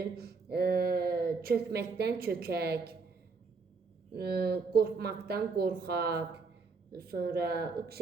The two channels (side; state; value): left; quieter; 4.5 dB